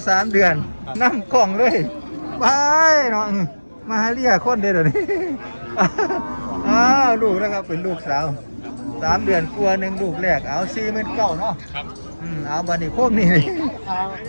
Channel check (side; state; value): both; inverted; correlation -1.00